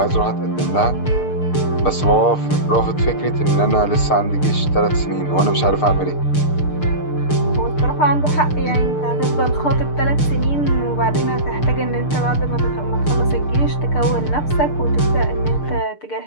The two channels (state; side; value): late; right; 6.7 ms